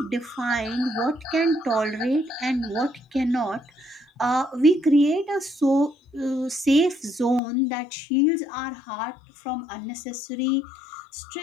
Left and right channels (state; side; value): drops out; right; at 7.4 s